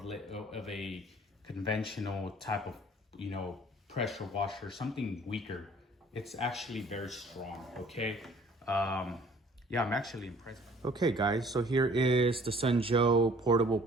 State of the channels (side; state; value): both; normal; correlation 0.54